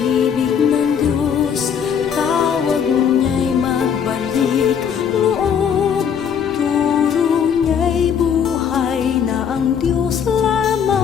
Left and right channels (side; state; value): right; quieter; 7.7 dB